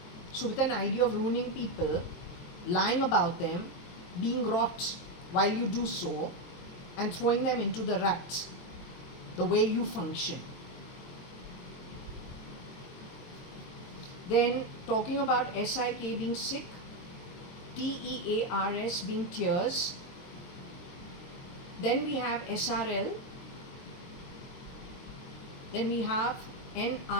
So with an idea of ruining people, lying about them, being rot while you do so, and throwing them into the rut, the way you function. Then talking about S-I-K being sick, T-E-A-R-S being tears. Then we have S-R-L. Then we have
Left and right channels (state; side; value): late; right; 23 ms